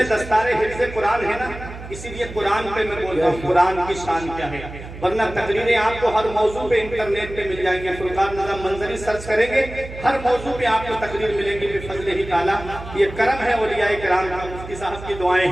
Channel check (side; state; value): right; noise; hum, 13 dB below the sound